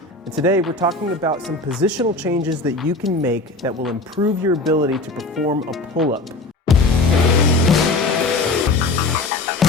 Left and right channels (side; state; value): right; quieter; 3.1 dB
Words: And today we're talking about some positional changes that you can make that will improve your ability to perform a pull-up.